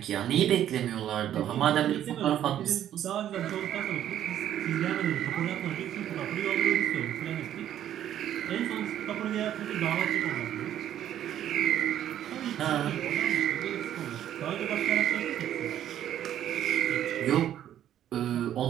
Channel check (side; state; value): left; quieter; 11.2 dB